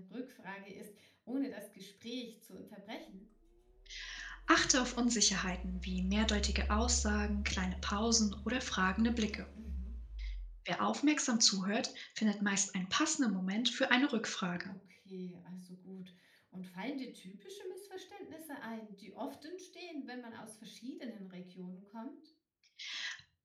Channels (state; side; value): identical; both; correlation 1.00